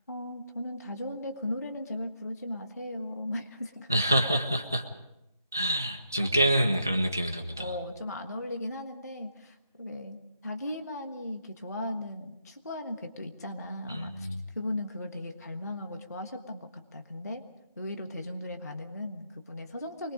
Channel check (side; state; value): both; inverted; correlation -0.77